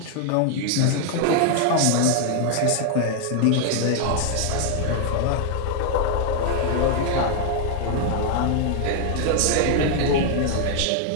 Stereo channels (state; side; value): different; both; correlation 0.00